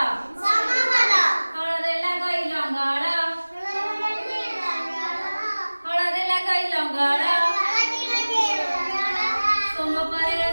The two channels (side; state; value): both; inverted; correlation -1.00